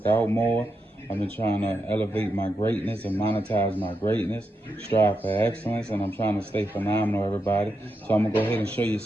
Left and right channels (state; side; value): normal; both; correlation 0.85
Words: out more. I've been trying to elevate my greatness and monetize my greatness, strive for excellence, and I'm trying to stay phenomenal, everybody. So I'm going to go ahead and show you